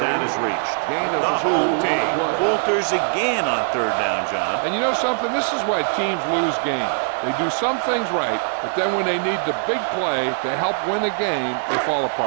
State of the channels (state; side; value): silent; left; digital silence